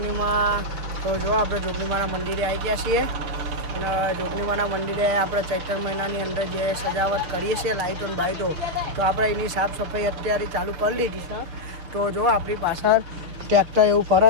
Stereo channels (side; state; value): left; late; 6.2 ms